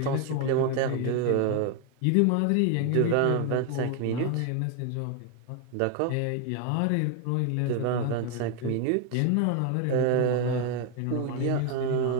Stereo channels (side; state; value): both; different; correlation 0.01